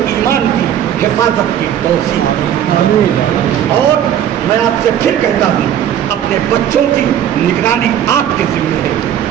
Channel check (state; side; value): quieter; left; 10.3 dB